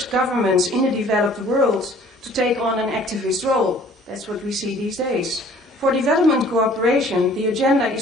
governments in the developed world to take on an activist role. That's what we see these days. For development cooperation, the agenda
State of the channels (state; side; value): normal; both; correlation 0.54